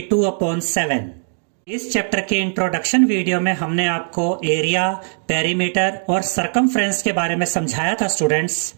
इस चैप्टर के इंट्रोडक्शन वीडियो में हमने आपको एरिया, पेरीमीटर और सरकमफ्रेंस के बारे में समझाया था स्टूडेंट्स।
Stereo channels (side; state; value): left; silent; 64 dB below the other